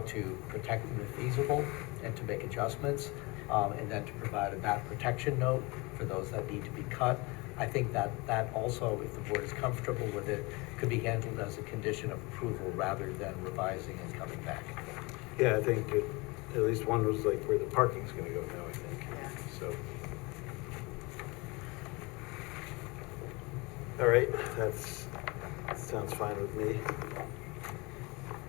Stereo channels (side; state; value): right; quieter; 25.9 dB